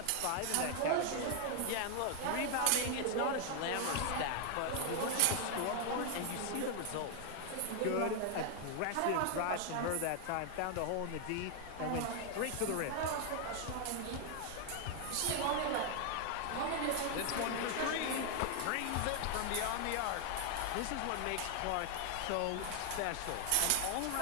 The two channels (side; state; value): both; different; correlation 0.00